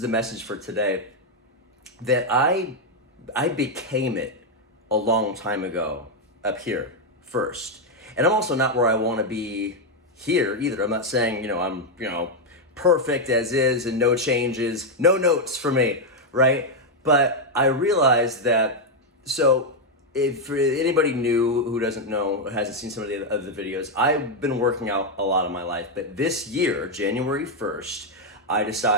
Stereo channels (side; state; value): both; normal; correlation 0.01